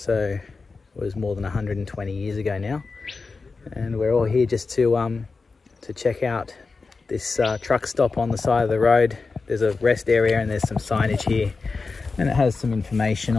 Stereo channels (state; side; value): quieter; right; 4.2 dB